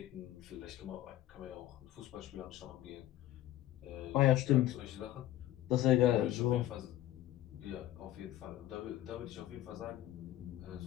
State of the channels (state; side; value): quieter; right; 13.8 dB